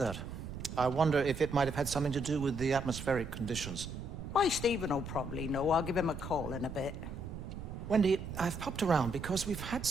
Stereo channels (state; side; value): noise; right; rumble, 8 dB below the sound